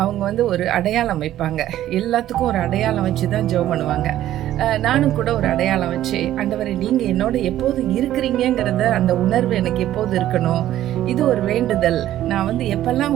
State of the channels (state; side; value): quieter; left; 13.0 dB